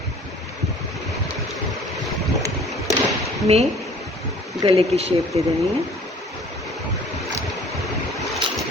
में। गले की शेप दे देनी है।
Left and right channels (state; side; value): normal; both; correlation 0.51